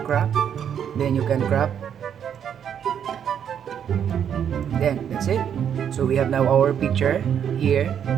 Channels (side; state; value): left; quieter; 8.6 dB